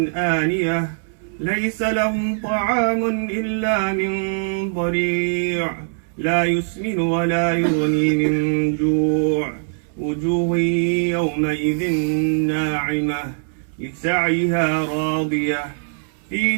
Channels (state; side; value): silent; left; 65 dB below the other